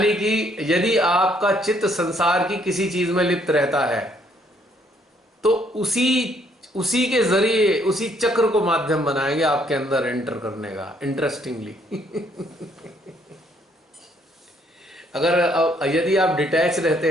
कि यदि आपका चित्त संसार की किसी चीज में लिप्त रहता है तो उसी के जरिए उसी चक्र को माध्यम बनाएंगे आपके अंदर एंटर करने का। इंटरेस्टिंगली यदि आप डिटैच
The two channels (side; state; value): both; normal; correlation 0.67